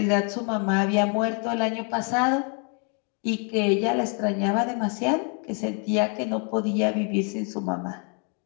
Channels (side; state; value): right; quieter; 39.4 dB